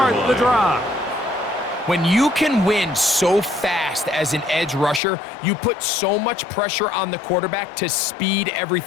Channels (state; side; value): drops out; right; at 5.0 s